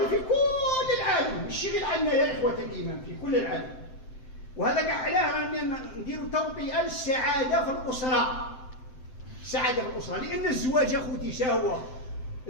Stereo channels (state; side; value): late; right; 7.8 ms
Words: في كل العالم، ماشي غير عندنا يا اخوة الايمان، في كل العالم. وهذا كاع علاه نديروا توطئة للسعادة في الأسرة، السعادة في الأسرة. لأن الزواج أخوتي شهوة،